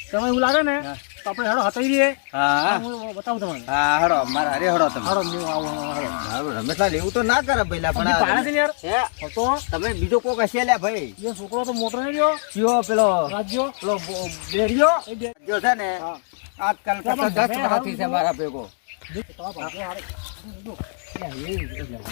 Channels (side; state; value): right; silent; 64 dB below the other